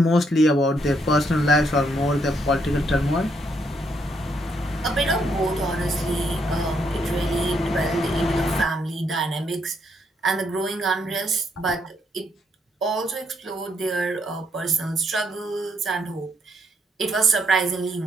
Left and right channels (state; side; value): normal; both; correlation 0.74